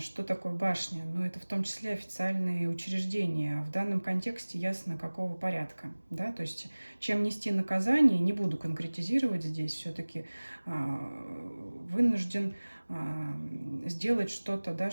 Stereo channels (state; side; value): inverted; both; correlation -1.00